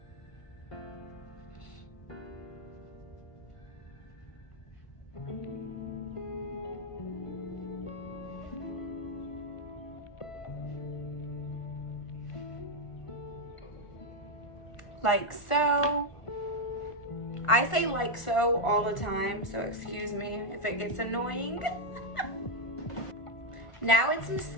Like so. I say like so all the time, so excuse me if it gets annoying. Now it's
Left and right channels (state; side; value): late; right; 1.4 ms